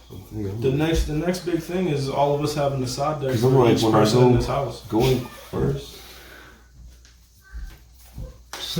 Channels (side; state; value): both; identical; correlation 1.00